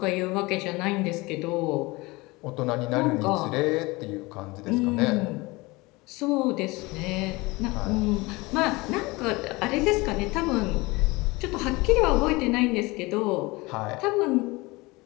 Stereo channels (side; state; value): right; quieter; 23.2 dB